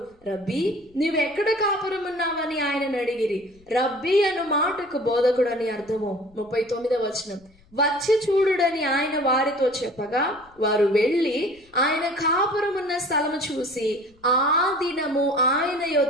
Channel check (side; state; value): left; noise; rumble, 30 dB below the sound